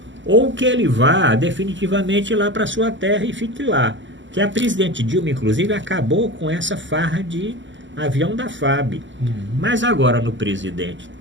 ou que ele vá definitivamente lá para sua terra e fique lá. Que a presidente Dilma, inclusive, acabou com essa farra de avião da FAB. Mas agora no presidente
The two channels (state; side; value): late; left; 0.54 ms